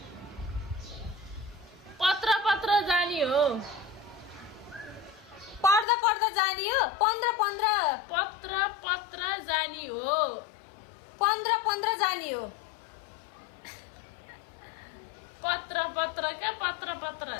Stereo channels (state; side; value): drops out; right; at 5.9 s